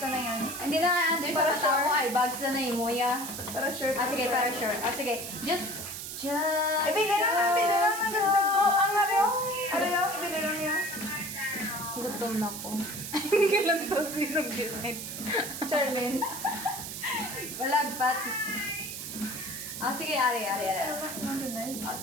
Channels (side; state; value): right; noise; hiss, 7 dB below the sound